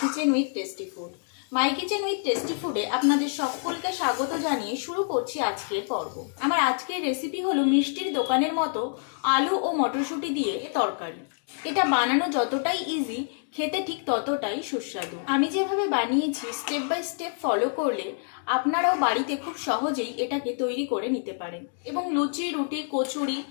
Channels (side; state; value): right; silent; 60 dB below the other